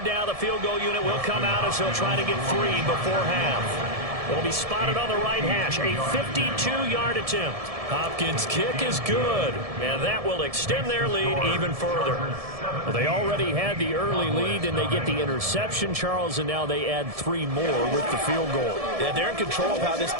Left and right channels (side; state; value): left; late; 1.7 ms